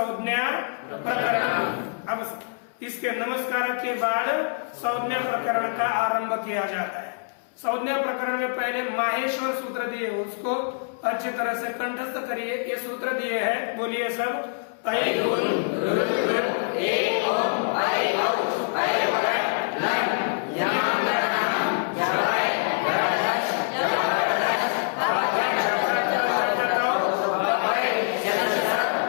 प्रकरण। अब इसके नमस्कार के बाद संज्ञा प्रकरण का आरंभ किया जाता है। संज्ञा प्रकरण में पहले माहेश्वर सूत्र दिए, उसको अच्छी तरह से कंठस्थ करिए। ये सूत्र दिए हैं, बोलिए सब।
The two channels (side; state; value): right; silent; 62 dB below the other